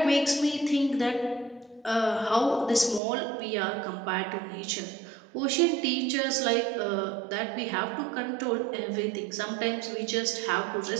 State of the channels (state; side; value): drops out; left; at 3.0 s